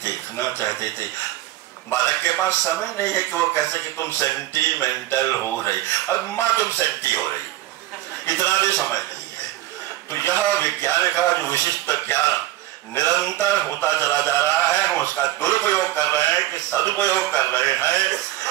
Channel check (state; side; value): quieter; left; 15.5 dB